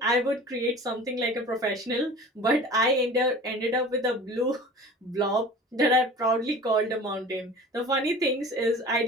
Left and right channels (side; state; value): both; normal; correlation 0.41